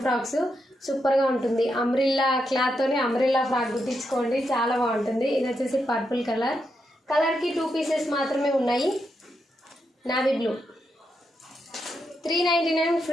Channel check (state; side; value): normal; both; correlation 0.83